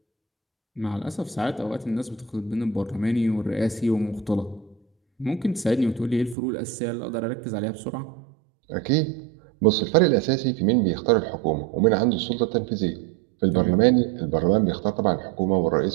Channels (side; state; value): left; drops out; at 6.4 s